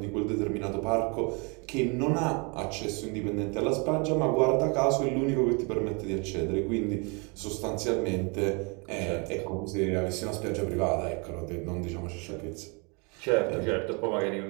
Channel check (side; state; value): left; quieter; 32.1 dB